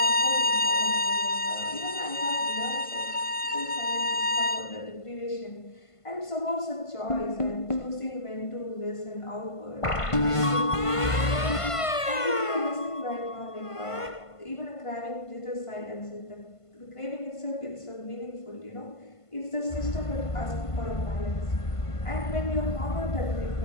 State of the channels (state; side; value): late; right; 1.5 ms